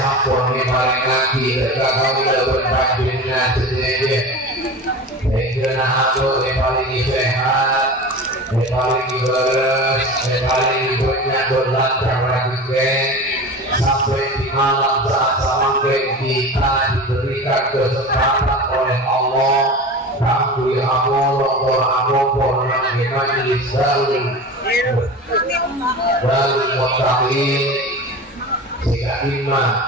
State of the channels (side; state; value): both; normal; correlation 0.32